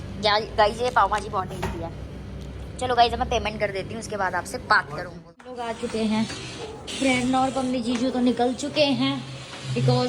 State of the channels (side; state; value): both; identical; correlation 1.00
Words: गाइस ये पाव भाजी बहुत टेस्टी है। चलो गाइस मैं पेमेंट कर देती हूँ, उसके बाद आपसे बात करूँगी। लोग आ चुके हैं, प्रेरणा और पम्मी जीजू तो निकल चुके हैं,